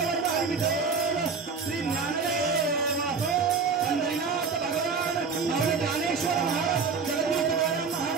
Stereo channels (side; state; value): left; quieter; 5.1 dB